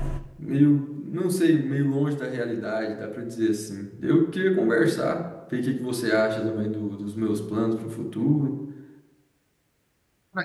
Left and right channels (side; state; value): both; identical; correlation 1.00